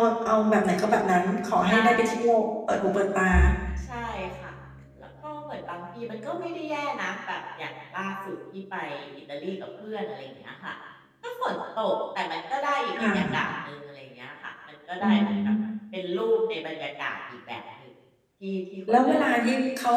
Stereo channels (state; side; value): identical; both; correlation 1.00